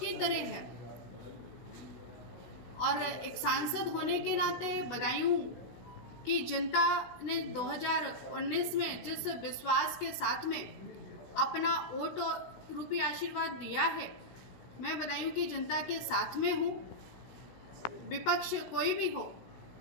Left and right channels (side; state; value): right; late; 16 ms